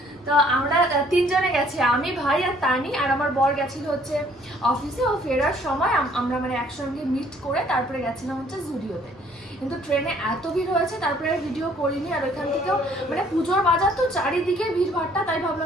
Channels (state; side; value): normal; both; correlation 0.60